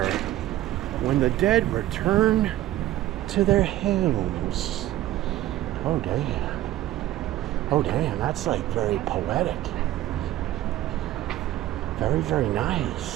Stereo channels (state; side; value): quieter; left; 14.4 dB